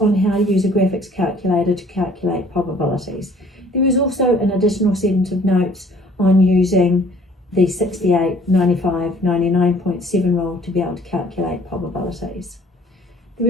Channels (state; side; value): normal; both; correlation 0.56